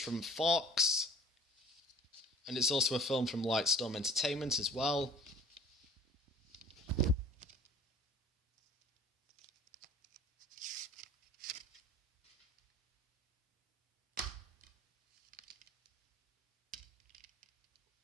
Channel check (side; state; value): both; normal; correlation 0.49